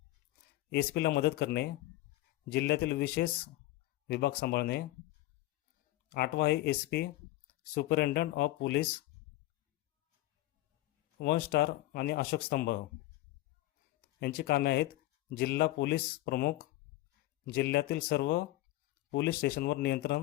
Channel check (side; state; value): right; quieter; 17.2 dB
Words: SP ला मदत करणे, जिल्ह्यातील विशेष विभाग सांभाळणे. आठवा आहे SP superintendent of police, 1 star आणि अशोक स्तंभ. यांची कामे आहेत जिल्हा पोलीस प्रमुख, जिल्ह्यातील सर्व पोलीस स्टेशनवर